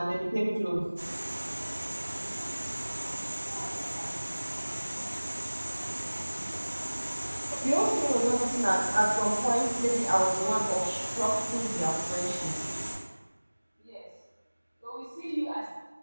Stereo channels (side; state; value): both; inverted; correlation -1.00